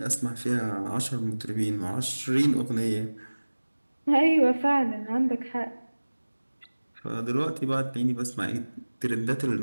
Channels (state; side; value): inverted; both; correlation -1.00